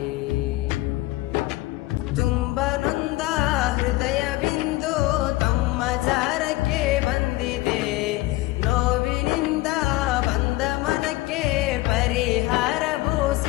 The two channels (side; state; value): right; quieter; 18.5 dB